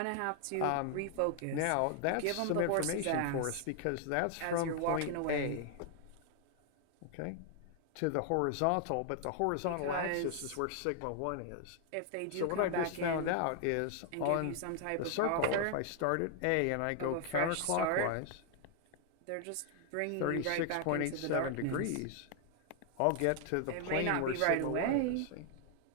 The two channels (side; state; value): both; different; correlation 0.00